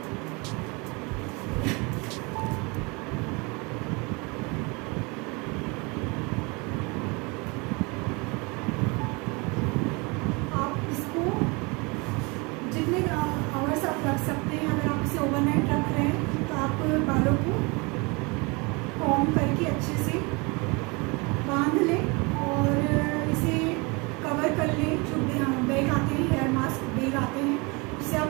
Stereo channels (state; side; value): quieter; left; 28.1 dB